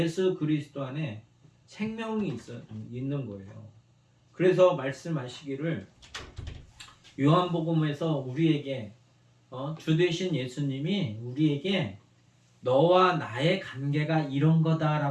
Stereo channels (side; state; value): both; identical; correlation 1.00